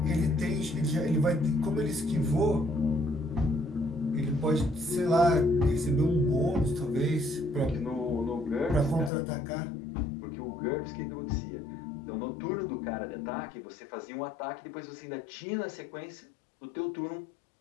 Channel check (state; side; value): drops out; right; at 9.1 s